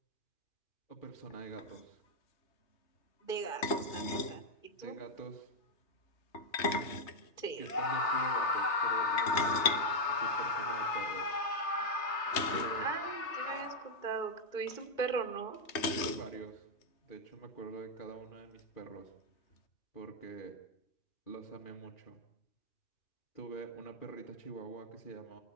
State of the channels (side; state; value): right; late; 3.2 ms